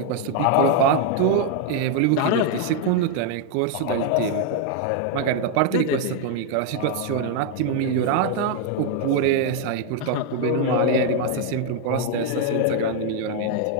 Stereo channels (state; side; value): different; both; correlation 0.01